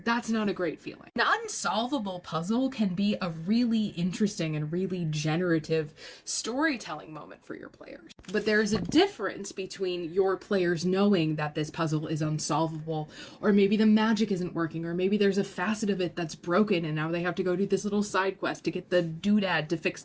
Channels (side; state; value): both; identical; correlation 1.00